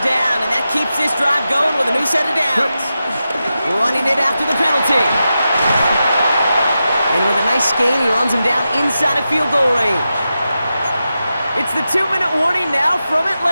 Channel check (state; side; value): inverted; both; correlation -0.90